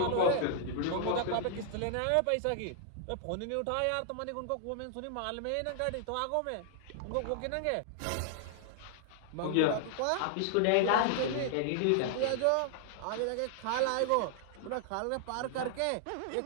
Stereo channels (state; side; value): different; both; correlation -0.01